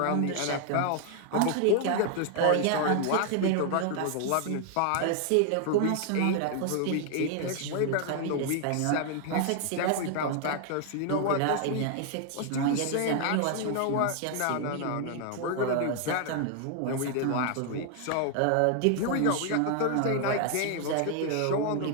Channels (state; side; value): different; both; correlation 0.00